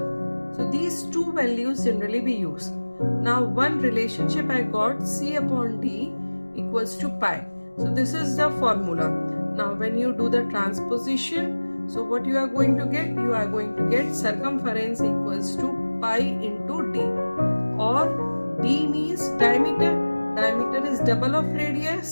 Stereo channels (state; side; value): inverted; both; correlation -1.00